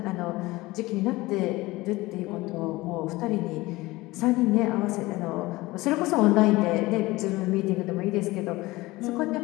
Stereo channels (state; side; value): quieter; right; 20.1 dB